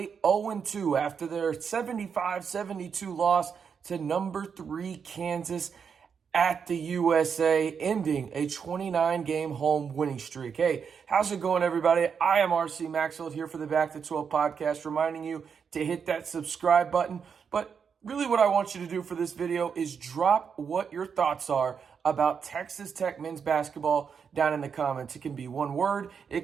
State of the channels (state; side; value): quieter; left; 6.6 dB